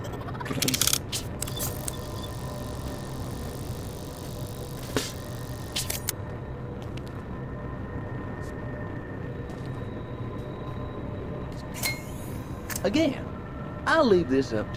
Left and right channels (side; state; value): both; identical; correlation 1.00